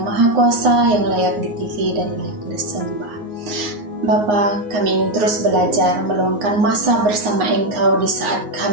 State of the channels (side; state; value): left; late; 9.6 ms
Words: Kuasa, yang layak ditinggi dan layak disembah. Bapa, kami ingin terus belajar meluangkan masa bersama Engkau di saat